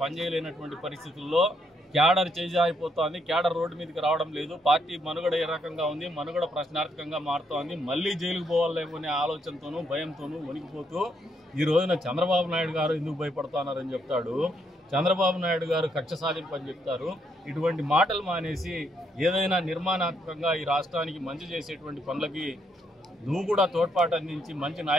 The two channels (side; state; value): both; normal; correlation 0.75